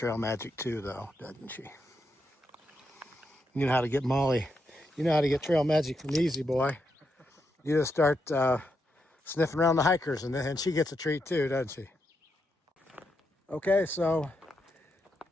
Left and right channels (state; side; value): normal; both; correlation 0.82